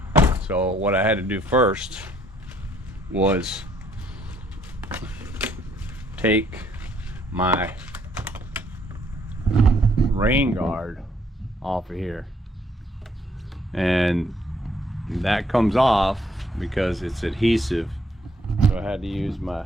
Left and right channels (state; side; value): normal; both; correlation 0.67